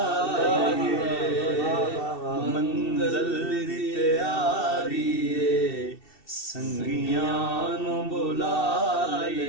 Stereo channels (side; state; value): right; late; 2.7 ms